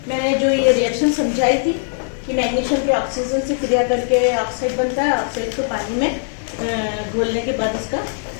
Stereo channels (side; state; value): right; silent; digital silence